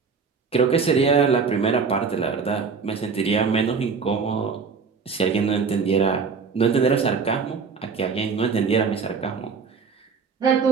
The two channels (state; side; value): quieter; left; 5.4 dB